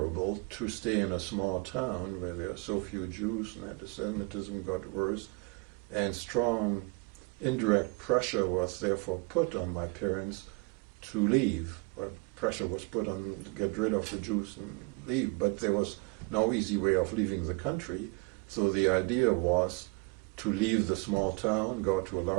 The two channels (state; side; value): quieter; left; 30.5 dB